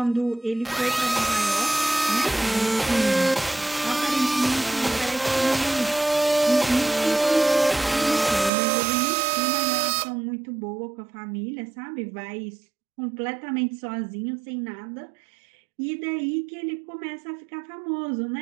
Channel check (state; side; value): drops out; left; at 8.5 s